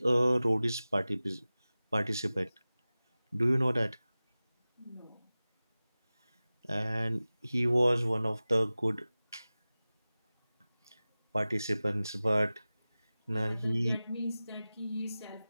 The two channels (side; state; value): both; inverted; correlation -0.97